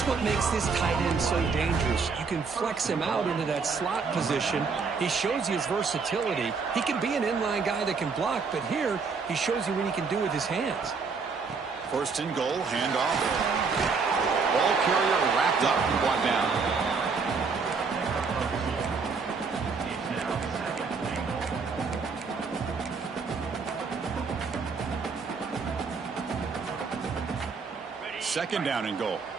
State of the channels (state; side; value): quieter; left; 5.0 dB